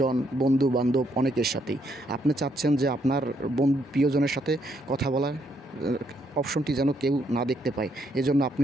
বন্ধু বান্ধব, অনেকের সাথেই। আপনি চাচ্ছেন যে আপনার প্রিয়জনের সাথে কথা বলার অপশনটি যেন কেউ না দেখতে পায়। এজন্য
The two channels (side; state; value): both; normal; correlation 0.73